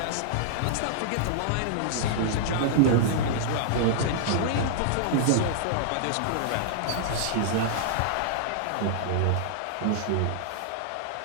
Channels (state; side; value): different; both; correlation -0.01